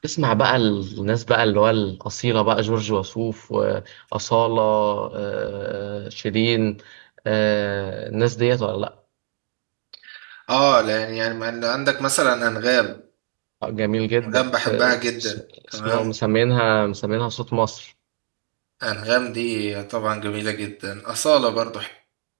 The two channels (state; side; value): silent; left; 56 dB below the other